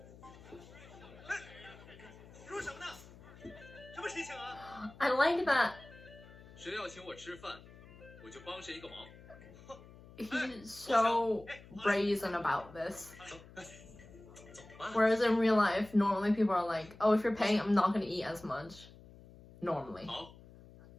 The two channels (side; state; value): left; noise; hum, 20 dB below the sound